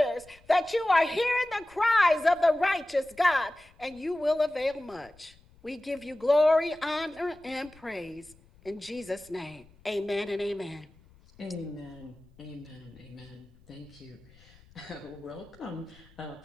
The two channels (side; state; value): left; noise; rumble, 26 dB below the sound